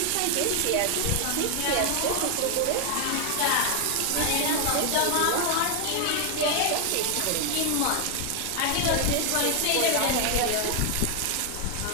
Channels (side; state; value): both; different; correlation 0.00